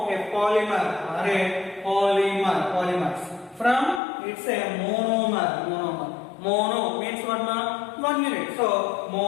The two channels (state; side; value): drops out; right; at 4.0 s